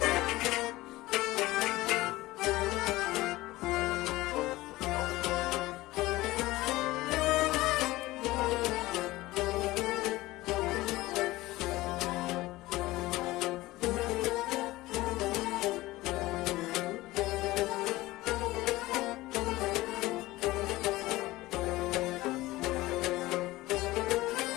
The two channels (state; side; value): quieter; right; 18.6 dB